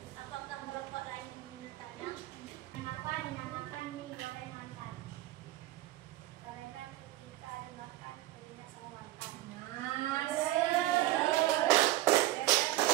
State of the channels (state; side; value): quieter; left; 16.1 dB